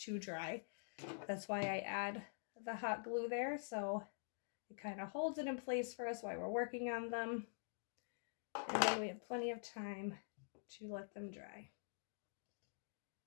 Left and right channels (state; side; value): silent; right; digital silence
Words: dry. That's why I add the hot glue there, so it kind of holds it in place for us while we're working on them. And then we have plenty of time to let them dry.